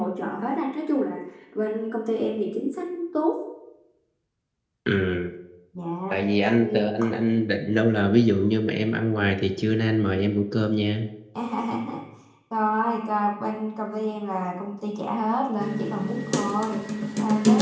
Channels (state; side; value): identical; both; correlation 1.00